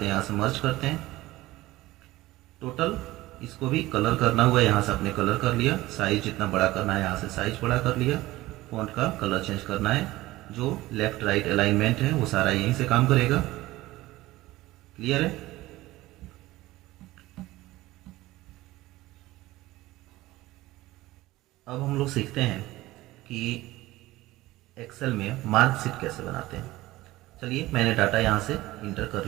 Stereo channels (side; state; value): left; quieter; 17.8 dB